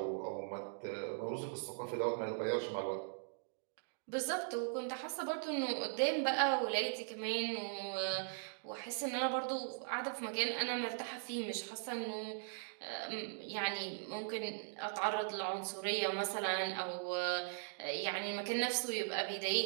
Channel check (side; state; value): left; silent; digital silence